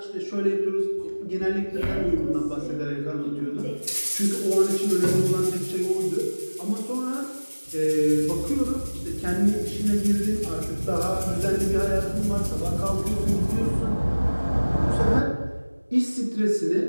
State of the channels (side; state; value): both; inverted; correlation -1.00